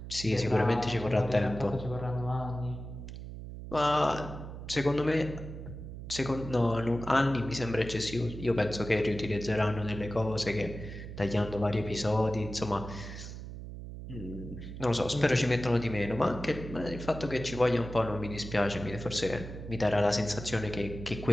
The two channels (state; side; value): noise; right; hum, 10 dB below the sound